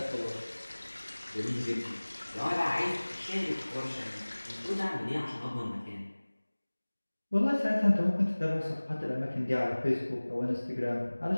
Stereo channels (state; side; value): inverted; both; correlation -1.00